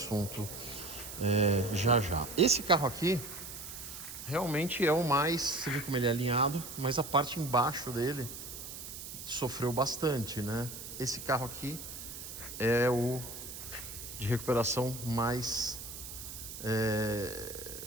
já já. Esse carro aqui realmente é o mais, você vê como ele é alinhado, mas a parte embaixo dele sofreu bastante, né? Esse carro aqui é o de recuperação mais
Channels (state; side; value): noise; right; hiss, 10 dB below the sound